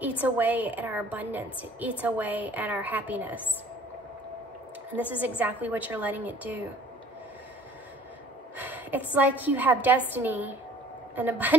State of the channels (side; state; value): both; normal; correlation 0.52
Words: eats away at our abundance. It eats away at our happiness. And this is exactly what you're letting it do. It's like you have destiny and